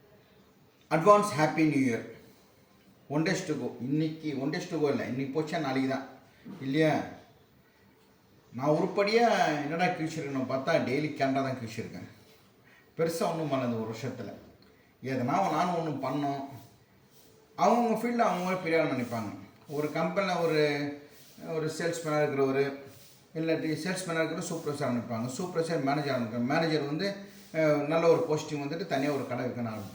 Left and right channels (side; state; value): both; identical; correlation 1.00